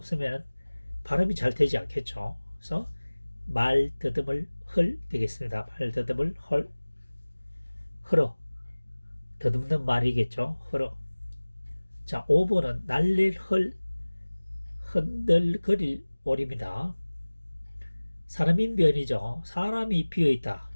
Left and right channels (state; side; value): inverted; both; correlation -1.00